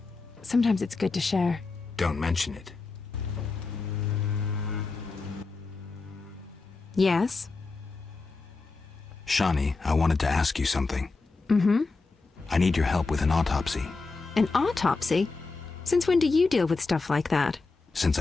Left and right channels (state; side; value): quieter; right; 3.9 dB